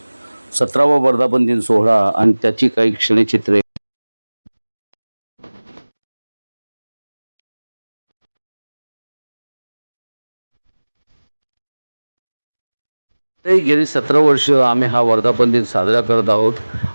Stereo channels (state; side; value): inverted; both; correlation -1.00